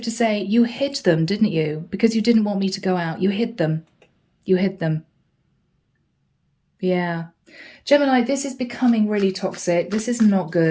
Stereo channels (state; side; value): identical; both; correlation 1.00